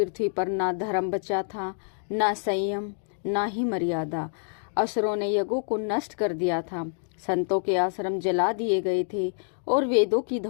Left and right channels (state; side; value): silent; right; digital silence